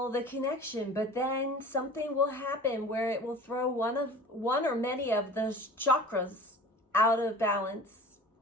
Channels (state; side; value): normal; both; correlation 0.41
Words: the connection, but then something will happen where it will throw one or many of those chakras out of balance,